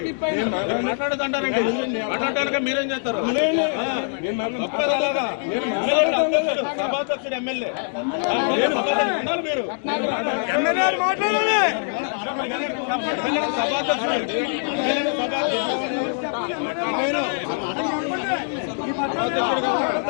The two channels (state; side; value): silent; right; 61 dB below the other